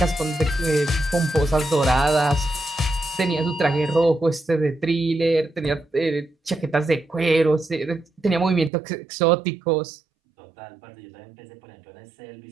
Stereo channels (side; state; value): left; drops out; at 8.7 s